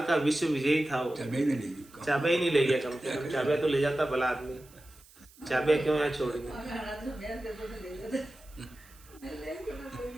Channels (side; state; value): right; noise; hiss, 25 dB below the sound